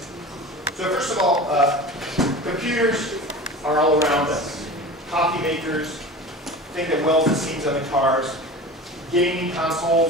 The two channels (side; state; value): both; normal; correlation 0.34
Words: So first of all, computers are all around us. Coffee makers, thing that welds the seams on the cars, gaming